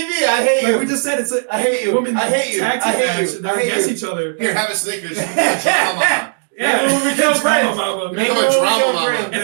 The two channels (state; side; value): silent; left; digital silence